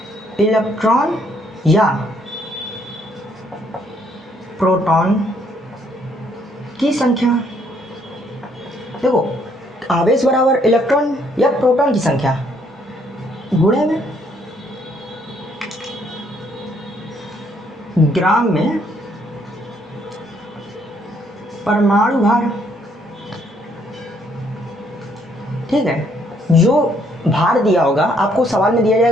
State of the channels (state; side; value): normal; both; correlation 0.68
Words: इलेक्ट्रॉन या प्रोटॉन की संख्या। देखो आवेश बराबर इलेक्ट्रॉन या प्रोटॉन की संख्या गुणे में ग्राम में परमाणु भार। ठीक है। जो भार दिया होगा आपको सवाल में दिया